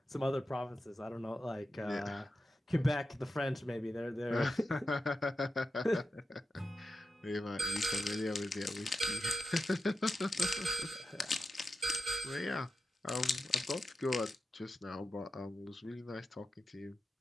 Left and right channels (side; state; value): both; normal; correlation 0.90